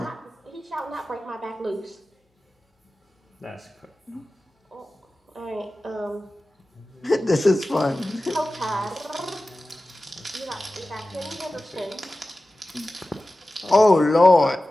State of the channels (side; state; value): both; normal; correlation 0.96